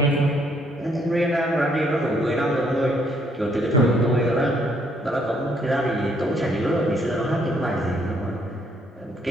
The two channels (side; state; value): both; normal; correlation 0.69